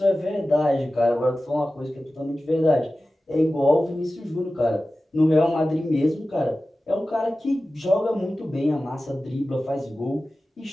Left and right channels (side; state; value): both; normal; correlation 0.95